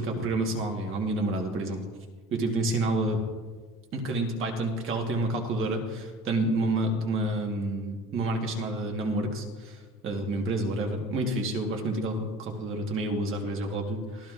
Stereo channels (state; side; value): normal; both; correlation 0.44